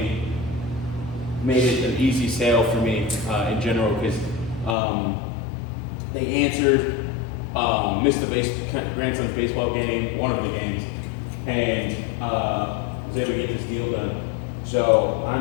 made it an easy sale for me in general, because they answered, missed the grandson's baseball game, one of the games, and was able to get this deal done. So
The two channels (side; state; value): right; drops out; at 4.8 s